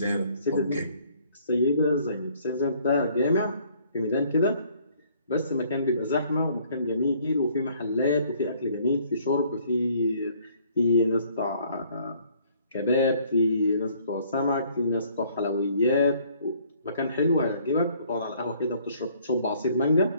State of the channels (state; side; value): inverted; both; correlation -0.61